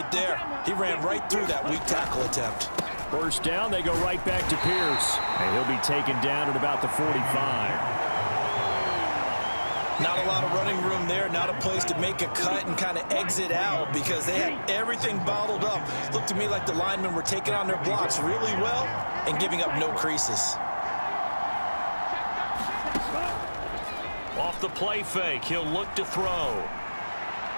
there? He ran right through that weak tackle attempt. First down, they go right back to Pierce. And he'll be taken down at about the 45. Not a lot of running room there, not a place to make a cut and kind of exit out because they had everything bottled up. Looked to me like the linemen were taking on their blocks really well and giving up no creases. Off the play fake, he'll look to throw.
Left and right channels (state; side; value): inverted; both; correlation -1.00